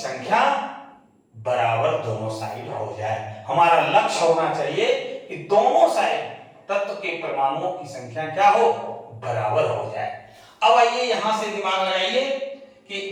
बराबर दोनों साइड हो जाए। हमारा लक्ष्य होना चाहिए कि दोनों साइड तत्व के परमाणुओं की संख्या क्या हो, बराबर हो जाए। अब आइए यहां से दिमाग लगाइए कि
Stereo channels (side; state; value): both; identical; correlation 1.00